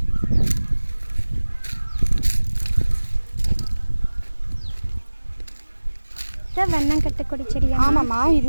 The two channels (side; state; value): both; inverted; correlation -1.00